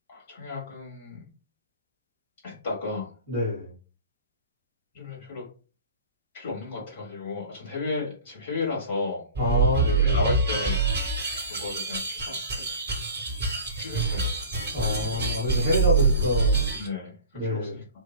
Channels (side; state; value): both; inverted; correlation -0.39